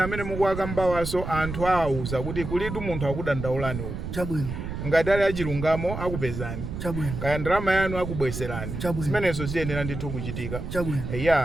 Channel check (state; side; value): noise; right; rumble, 6 dB below the sound